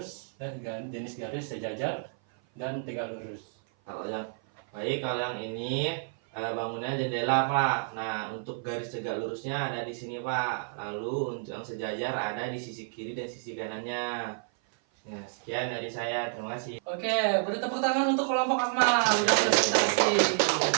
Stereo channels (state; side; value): silent; left; 55 dB below the other